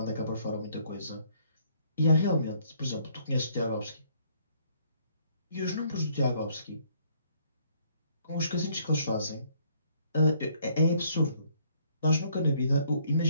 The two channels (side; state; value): both; inverted; correlation -0.65